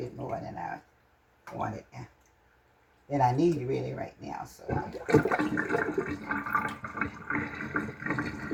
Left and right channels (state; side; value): identical; both; correlation 1.00